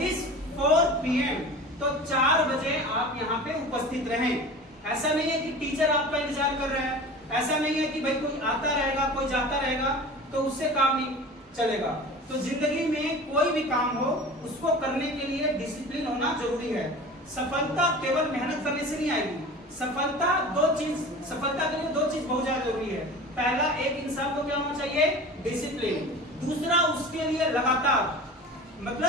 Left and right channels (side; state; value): both; normal; correlation 0.37